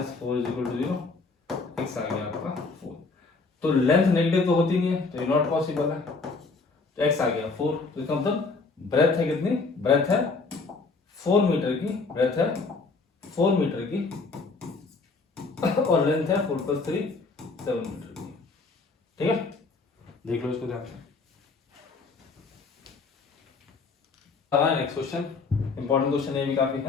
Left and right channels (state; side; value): quieter; right; 4.1 dB